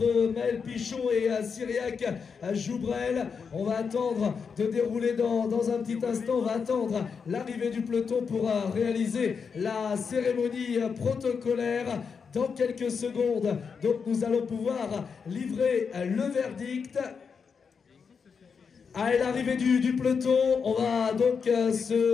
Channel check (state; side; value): quieter; right; 5.9 dB